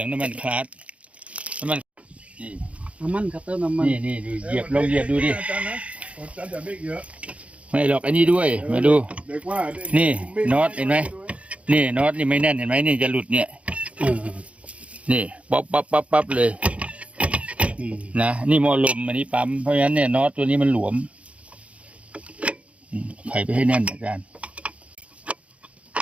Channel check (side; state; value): left; late; 0.064 ms